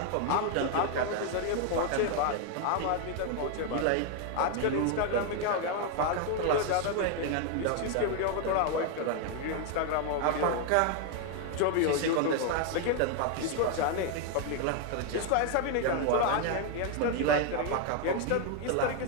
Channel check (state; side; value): different; both; correlation 0.01